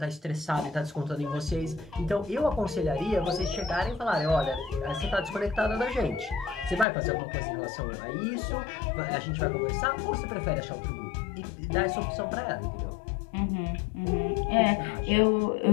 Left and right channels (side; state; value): right; drops out; at 6.9 s